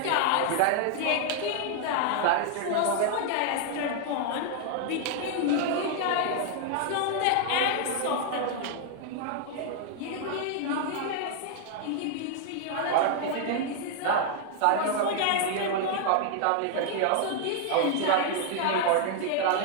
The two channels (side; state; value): both; different; correlation 0.00